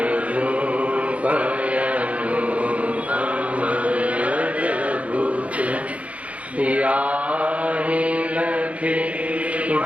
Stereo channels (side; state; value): left; late; 0.065 ms